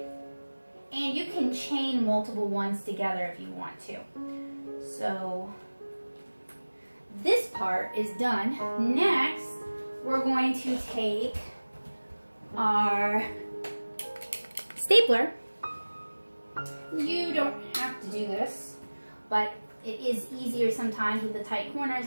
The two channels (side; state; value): both; inverted; correlation -1.00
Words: And you can chain multiple ones together if you want to. So this part is done. Next, we're going to take our stapler. You don't have to do this, but it is easier sometimes with the tight corners,